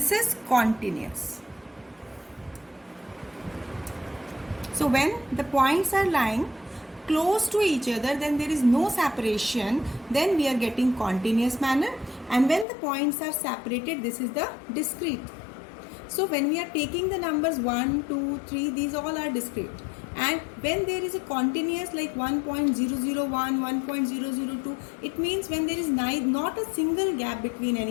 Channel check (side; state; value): right; drops out; at 12.7 s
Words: is continuous. So when the points are lying close to each other, then there is no separation, then we are getting continuous manner. And when the points are separated, this is the discrete. So when we are taking the numbers 1, 2, 3, these all are discrete. And when there is a continuous like 1.001, 1.002, it means when there is not a single gap between